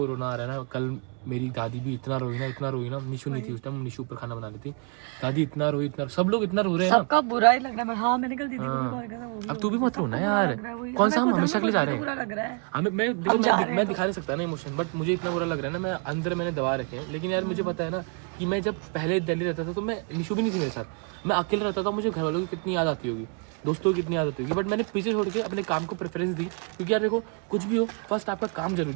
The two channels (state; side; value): quieter; left; 37.6 dB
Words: रोना आ रहा है ना, कल मेरी दादी भी इतना रोई ना, निशु नहीं थी उस टाइम, निशु ऊपर खाना बना रही थी, दादी इतना रोई, इतना सब लोग इतना रो रहे हैं ना। सबका बुरा ही लग रहा है। हाँ मैंने कल दीदी को भी कॉल किया था, वो भी अब तू भी मत रोना सबको यार, बुरा लग रहा है, वही। कौन सा हम मेरे को हमेशा के लिए जा रहे बुरा हैं, लग रहा है। हमें मैं दिखा नहीं सकता ना इमोशन, बट मुझे इतना बुरा लग रहा है ना, मैं अंदर मैंने दबा रखे हैं। लेकिन यार मुझे पता है ना कि मैं जब पहले दिल्ली रहता था तो मैं, निशु भी नहीं थी मेरे साथ, मैं अकेले रहता था, मुझे घर वालों की कितनी याद आती होगी, दोस्तों की कितनी याद आती होगी, बट मैंने पीछे छोड़ के अपने काम को प्रेफरेंस दी। क्योंकि यार देखो कुछ भी हो, फर्स्ट आपका काम